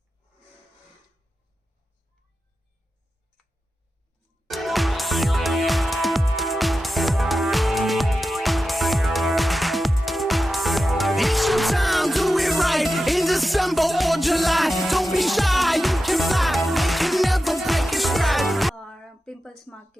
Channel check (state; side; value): normal; both; correlation 0.92